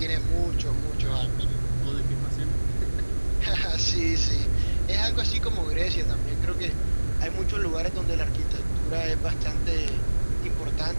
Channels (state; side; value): inverted; both; correlation -1.00